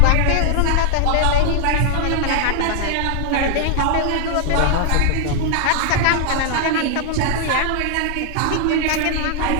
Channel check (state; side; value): different; both; correlation 0.00